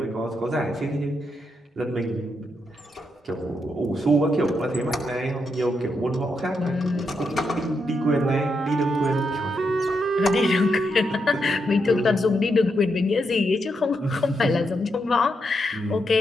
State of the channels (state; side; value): normal; both; correlation 0.82